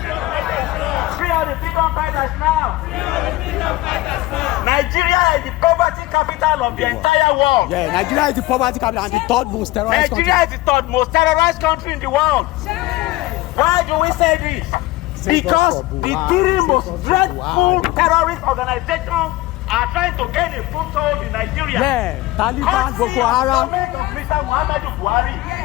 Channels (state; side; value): quieter; right; 18.5 dB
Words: all the freedom fighters now. Nigeria is the poverty capital of the entire world. Yeah, Nigeria is the poverty capital and the third most terrorized country. Nigeria is the third most terrorized country in the world. Why do we say this? Because the three most dreadful terrorist organizations are trying to gain a foothold in Nigeria. Yeah, Taliban, Courtesy Boko of the Haram. government of Mr. Muhammadu Buhari.